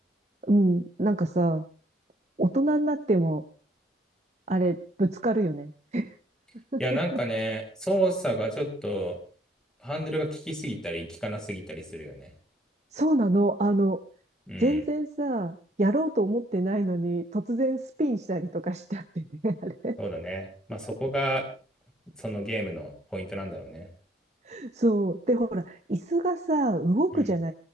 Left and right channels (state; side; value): normal; both; correlation 0.65